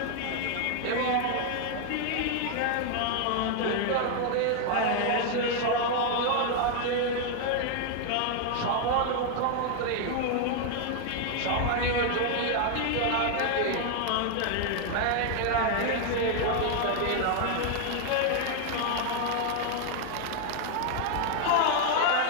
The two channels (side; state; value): both; different; correlation 0.00